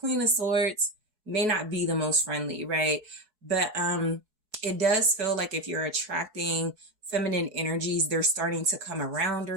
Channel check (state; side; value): late; left; 4.7 ms